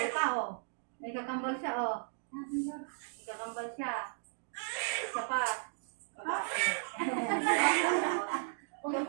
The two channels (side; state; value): left; silent; digital silence